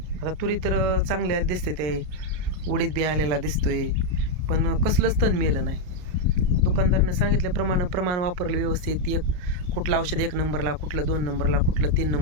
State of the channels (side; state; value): left; late; 33 ms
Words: आता तुरी तर चांगल्या दिसते, ते उडीद बी आलेला दिसतोय, पण कसलंच तण मेलं नाही. दुकानदारानं सांगितल्याप्रमाणे प्रमाण वापरलं व्यवस्थित. कुठलं औषध 1 नंबरला, कुठलं 2 नंबरला, कुठलं 3